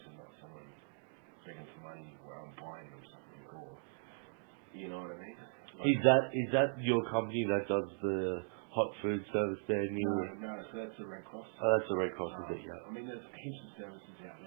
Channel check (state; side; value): silent; left; digital silence